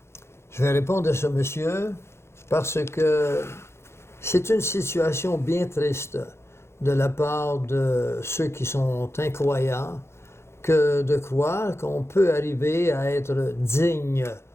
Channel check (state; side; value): late; right; 0.13 ms